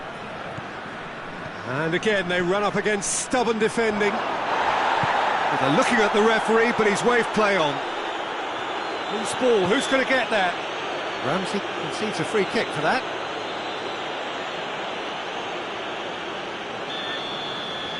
And again, they run up against stubborn defending. They're looking at the referee, but he's waved play on. Loose ball, who's going to get that? Ramsey concedes a free kick for that.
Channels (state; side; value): identical; both; correlation 1.00